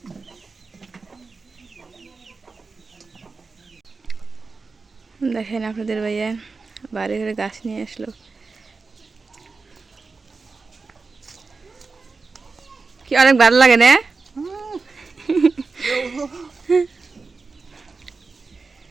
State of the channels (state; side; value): quieter; left; 4.2 dB